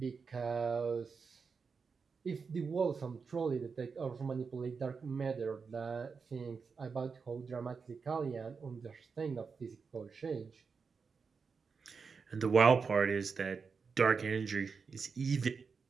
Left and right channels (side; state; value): left; quieter; 5.3 dB